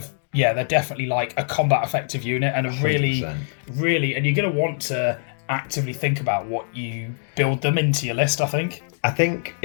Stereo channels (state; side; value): silent; right; digital silence